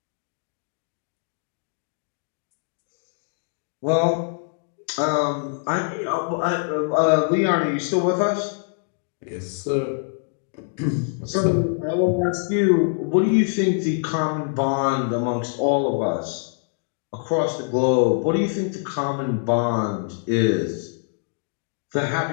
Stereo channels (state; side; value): silent; right; digital silence